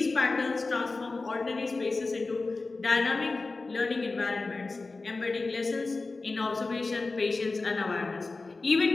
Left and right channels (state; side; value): quieter; right; 3.6 dB